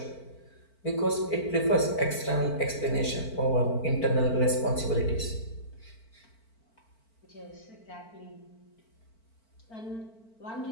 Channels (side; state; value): right; late; 4.5 ms